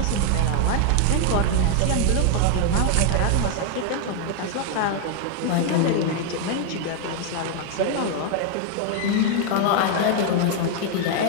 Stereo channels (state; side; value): different; both; correlation 0.01